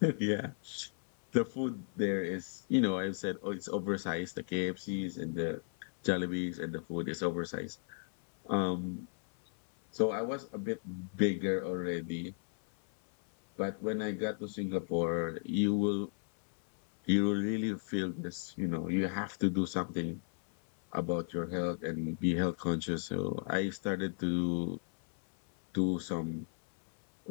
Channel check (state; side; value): silent; right; 55 dB below the other